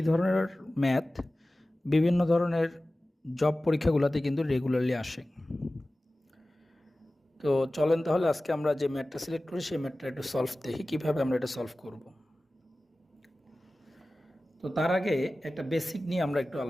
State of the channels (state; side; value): normal; both; correlation 0.96